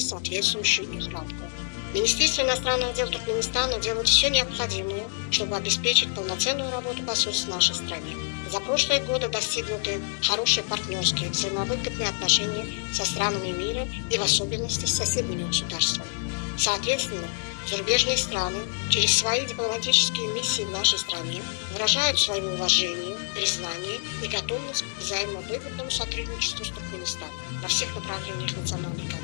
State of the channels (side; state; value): right; silent; 60 dB below the other